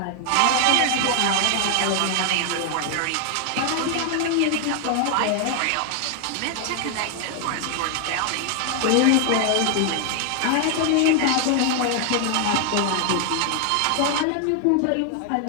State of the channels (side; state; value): both; different; correlation 0.00